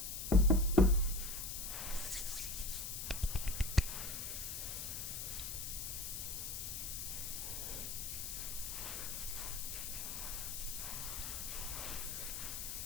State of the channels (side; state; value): left; noise; hiss, 4 dB below the sound